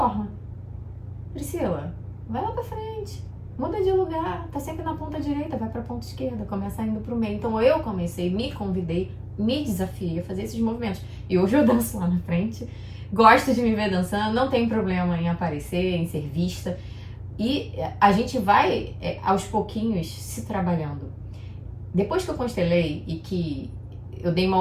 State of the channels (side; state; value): both; identical; correlation 1.00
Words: Priscila, vai lá pra frente, muda de lugar, tá sempre na ponta direita, vai pra ponta esquerda, começa indo pro meio. Então eu me convidei me desafiei a fazer esses movimentos. E hoje eu danço lá na frente, gosto de me ver dançando, não tem problema em aparecer, em ser vista. E a gente vai, aos pouquinhos, se trabalhando. Depois que eu constelei e que eu dei uma